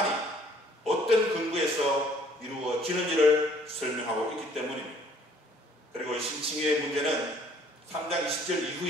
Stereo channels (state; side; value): normal; both; correlation 0.59